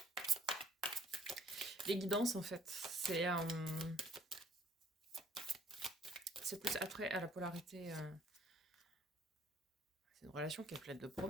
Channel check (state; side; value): normal; both; correlation 0.60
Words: guidances en fait. C'est plus attrait à la polarité. C'est une relation qui est pleine de